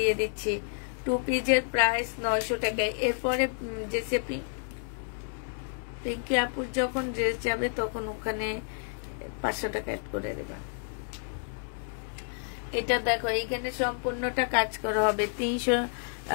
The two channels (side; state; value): right; silent; digital silence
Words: দিচ্ছি। 2 পিসের প্রাইস 900 টাকায়। এরপরে যে পিঙ্কি আপুর যখন ড্রেস যাবে তখন ওখানে 500 টাকা অ্যাড করে দেবা। এটা দেখো, এইখানে সম্পূর্ণটা কাজ করা হবে,